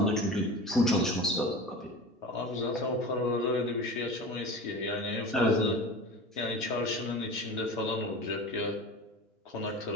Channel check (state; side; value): normal; both; correlation 0.33